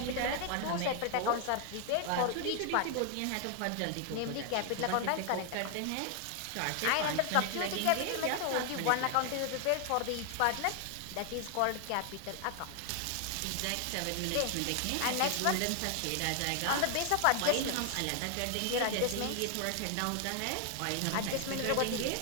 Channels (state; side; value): different; both; correlation 0.00